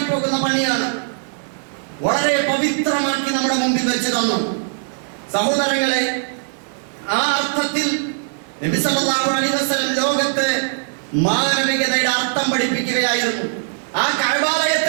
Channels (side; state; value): left; silent; digital silence